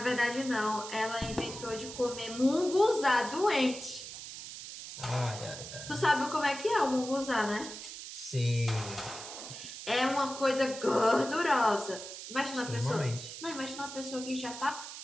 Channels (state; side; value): noise; right; hiss, 11 dB below the sound